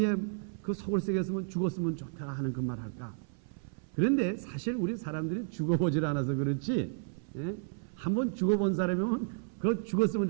그 속을 새겼으면 죽었으면 좋다 하는 그 말 할까. 그런데 사실 우리 사람들이 죽어보질 않아서 그렇지 한번 죽어본 사람이면 그 죽었으면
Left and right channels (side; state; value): left; silent; 56 dB below the other